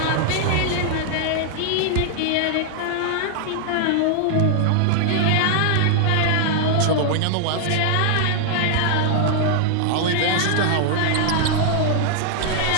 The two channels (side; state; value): both; different; correlation 0.00